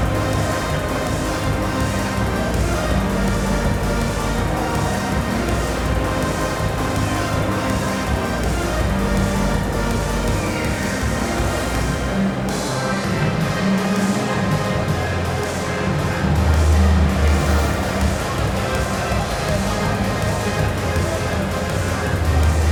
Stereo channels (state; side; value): identical; both; correlation 1.00